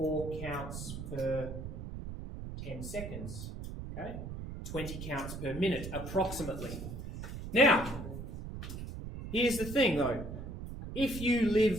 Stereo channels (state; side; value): noise; right; rumble, 8 dB below the sound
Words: counts per 10 seconds. Okay? 20 counts per minute, approximately. Now, here's the thing though. If you